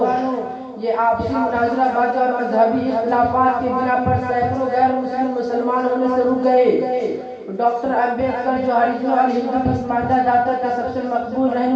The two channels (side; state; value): both; identical; correlation 1.00